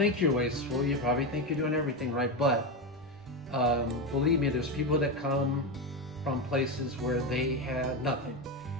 you're wasteful. You probably think you're doing everything right, but believe me, there's people that come from places where they had nothing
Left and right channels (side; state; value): both; normal; correlation 0.14